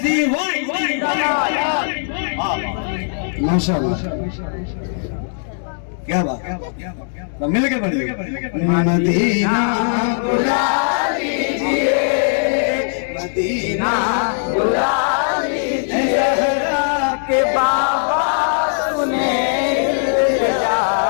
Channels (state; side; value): silent; right; digital silence